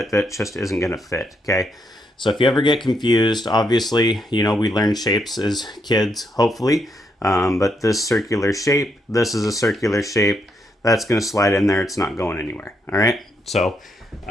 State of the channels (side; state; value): both; normal; correlation 0.78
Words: that just isn't gonna fit, okay? So if you ever get confused, obviously, you know, we learn shapes as kids, hopefully. But this circular shape, this is a circular shape. That's gonna slide in there, it's not going anywhere, all right? So